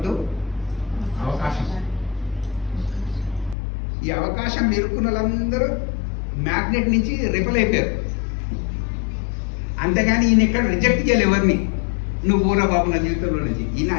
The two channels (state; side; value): drops out; right; at 3.6 s